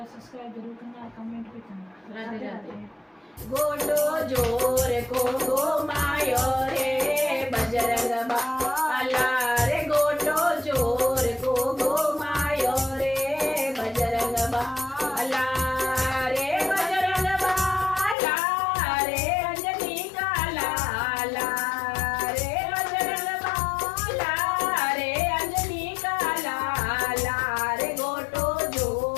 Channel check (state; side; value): drops out; right; at 18.2 s